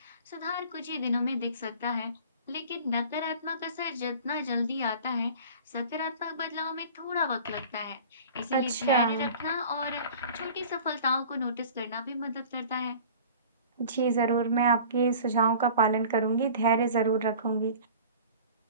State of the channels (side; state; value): both; inverted; correlation -0.43